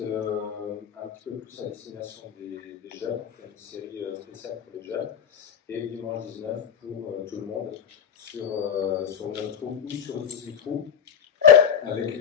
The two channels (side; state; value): right; quieter; 7.8 dB